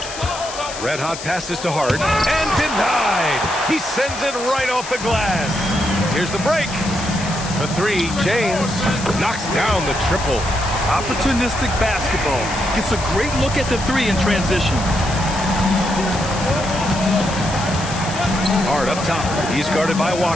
Red hot passes to Hart and denied. He sends it right off the glass. Here's the break. The 3, James knocks down the triple. Opportunistic basketball. Gets a great look at the 3 in transition. Hart up top. He's guarded by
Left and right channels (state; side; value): noise; left; hiss, 10 dB below the sound